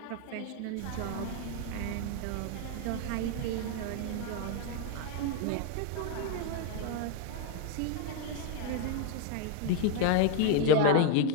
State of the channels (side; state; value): both; different; correlation 0.01